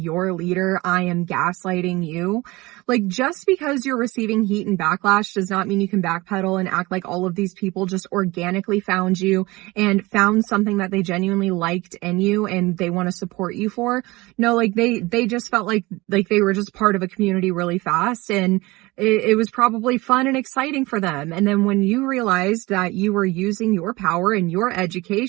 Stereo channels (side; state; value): left; quieter; 21.8 dB